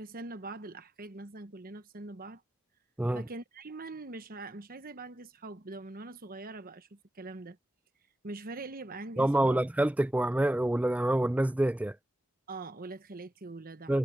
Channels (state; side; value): normal; both; correlation 0.91